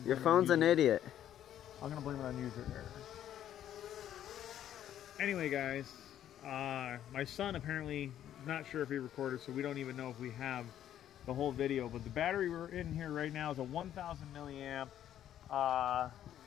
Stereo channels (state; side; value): quieter; right; 11.0 dB